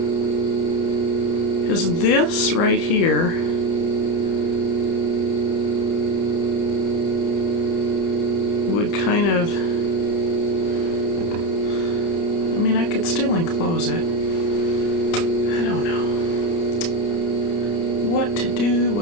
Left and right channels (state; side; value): late; right; 30 ms